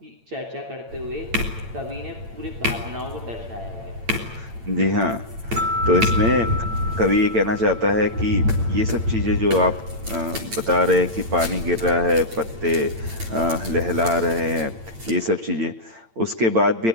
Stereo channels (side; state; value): left; late; 8.9 ms